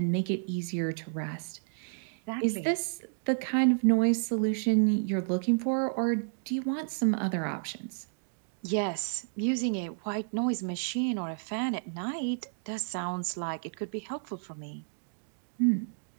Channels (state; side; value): silent; left; digital silence